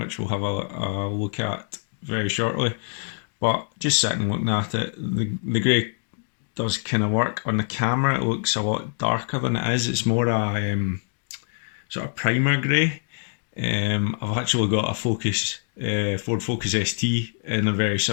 we'll have a look at very shortly. But just sitting looking at it, the grey does kind of work. On the camera it looks a lot darker than it is. It's more a sort of primer grey. I've actually got a Focus, Ford Focus ST in a very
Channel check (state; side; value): silent; right; 61 dB below the other